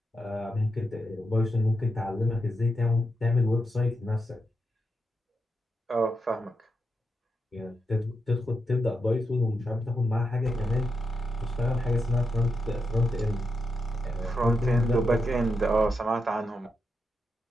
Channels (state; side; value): normal; both; correlation 0.85